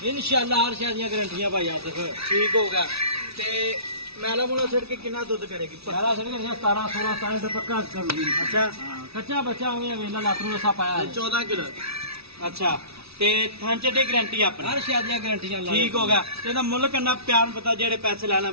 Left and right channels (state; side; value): late; left; 0.78 ms